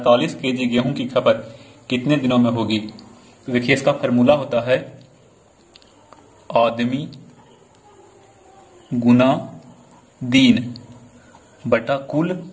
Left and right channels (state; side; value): identical; both; correlation 1.00